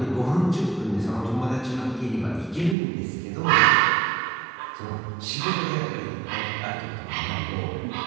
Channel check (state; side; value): drops out; left; at 2.8 s